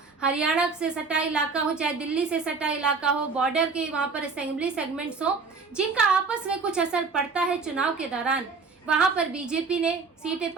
हरियाणा से सटा इलाका हो चाहे दिल्ली से सटा इलाका हो, बॉर्डर के वहां पर असेंबली सेगमेंट्स हो जिनका आपस में कुछ असर पड़ता है चुनाव के दौरान, वहां पर बीजेपी ने सीटें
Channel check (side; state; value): left; quieter; 4.6 dB